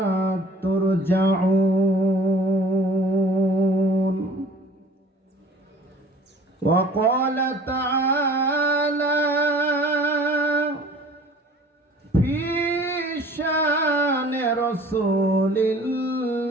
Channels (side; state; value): both; normal; correlation 0.48